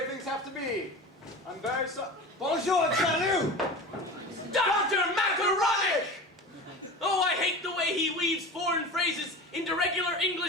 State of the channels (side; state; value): both; normal; correlation 0.32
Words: things have to be. I'm very sorry. Bonjour, salut! Dr. Macaronic! Oh, I hate the way he weaves foreign phrases into regular